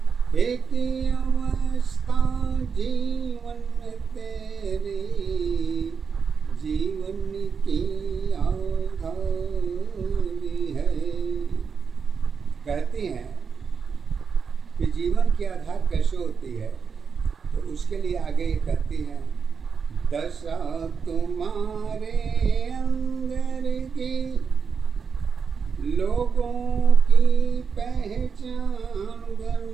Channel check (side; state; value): left; quieter; 6.0 dB